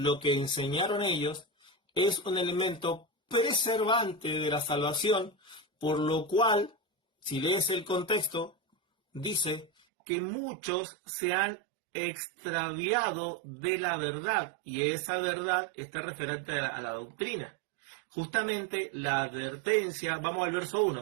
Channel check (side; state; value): left; drops out; at 9.7 s